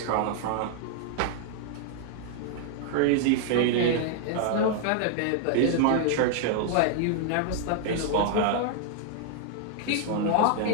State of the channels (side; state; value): both; different; correlation 0.00